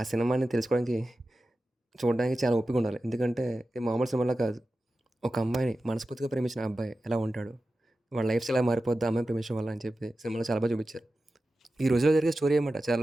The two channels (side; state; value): both; normal; correlation 0.93